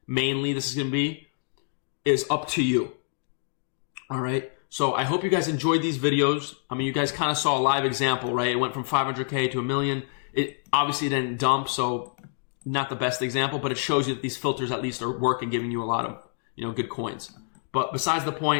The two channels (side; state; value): right; silent; digital silence